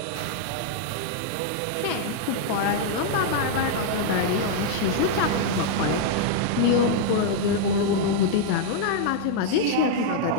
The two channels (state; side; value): different; both; correlation -0.01